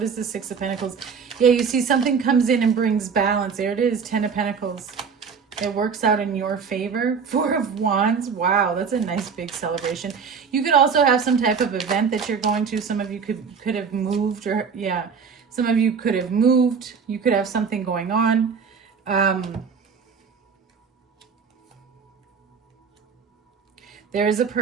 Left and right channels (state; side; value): quieter; left; 6.0 dB